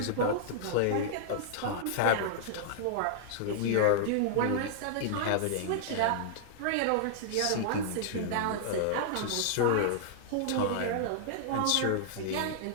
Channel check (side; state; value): both; different; correlation -0.01